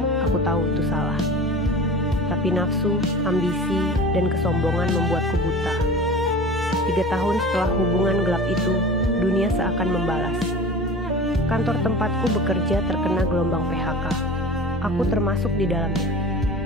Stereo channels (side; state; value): both; normal; correlation 0.37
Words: Aku tahu itu salah. Tapi nafsu, ambisi, dan kesombongan membuatku buta. 3 tahun setelah hubungan gelap itu, dunia seakan membalas. Kantor tempatku bekerja terkena gelombang PHK. Aku termasuk di dalamnya.